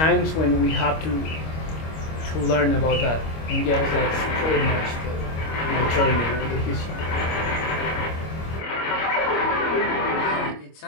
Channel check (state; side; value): late; right; 25 ms